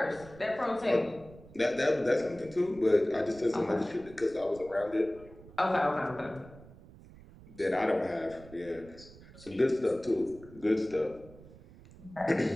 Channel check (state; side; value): noise; right; rumble, 20 dB below the sound